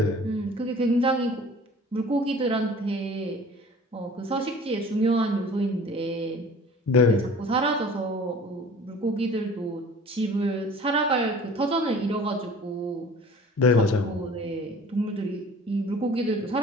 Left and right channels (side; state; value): both; normal; correlation 0.46